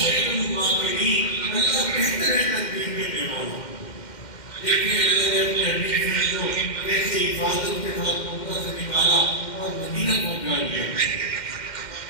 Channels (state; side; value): late; right; 2.1 ms